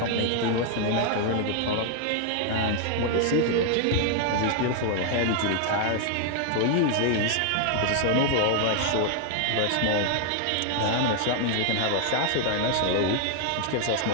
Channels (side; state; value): both; different; correlation 0.00